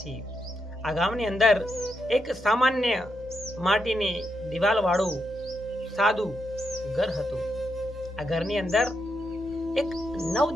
આ ગામની અંદર એક સામાન્ય માટીની દિવાલવાળું સાદું ઘર હતું। આ ઘરની અંદર એક નવ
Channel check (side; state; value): both; normal; correlation 0.83